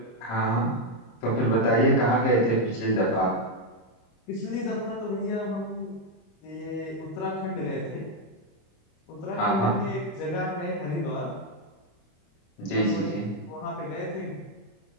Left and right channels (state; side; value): late; right; 25 ms